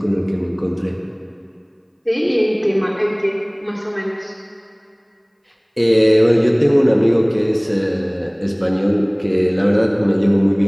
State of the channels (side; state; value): both; identical; correlation 1.00